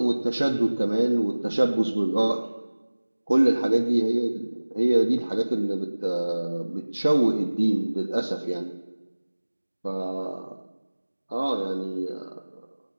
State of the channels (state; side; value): inverted; both; correlation -1.00